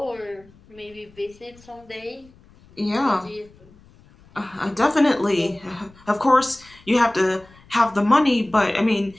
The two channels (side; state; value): left; noise; rumble, 27 dB below the sound